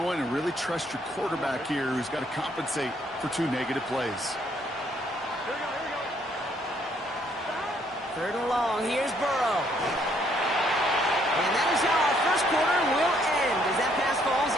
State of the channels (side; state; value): both; normal; correlation 0.68